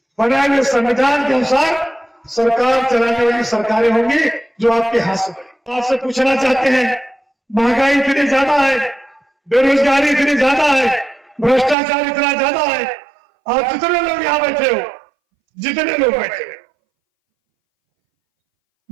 बनाए हुए संविधान के अनुसार सरकार चलाने वाली सरकारें होंगी जो आपके हाथ से बनी। आपसे पूछना चाहते हैं, महंगाई इतनी ज्यादा है, बेरोजगारी इतनी ज्यादा है, भ्रष्टाचार इतना ज्यादा है, और जितने लोग यहां बैठे हो, जितने लोग बैठे हो,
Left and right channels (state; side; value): drops out; left; at 11.8 s